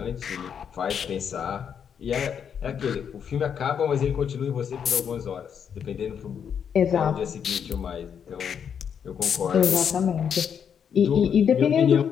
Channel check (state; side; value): quieter; right; 7.7 dB